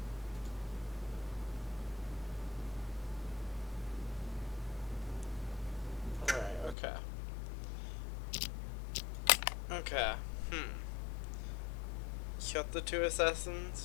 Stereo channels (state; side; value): drops out; right; at 6.8 s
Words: Alright, okay. Okay, Shot the two